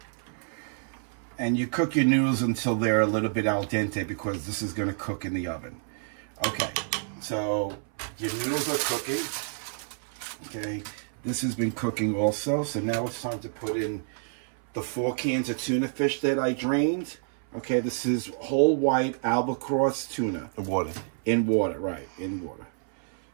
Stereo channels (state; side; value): silent; left; 57 dB below the other